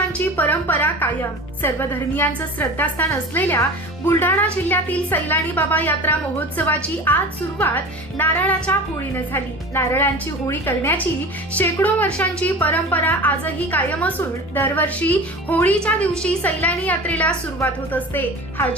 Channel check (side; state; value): both; normal; correlation 0.35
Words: परंपरा कायम। सर्व धर्मियांचं श्रद्धास्थान असलेल्या बुलढाणा जिल्ह्यातील सैलानी बाबा यात्रा महोत्सवाची आज सुरुवात नारळाच्या होळीने झाली। नारळांची होळी करण्याची शेकडो वर्षांची परंपरा आजही कायम असून दरवर्षी होळीच्या दिवशी सैलानी यात्रेला सुरुवात होत असते।